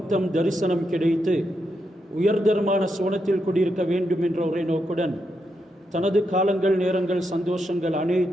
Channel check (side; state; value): both; normal; correlation 0.82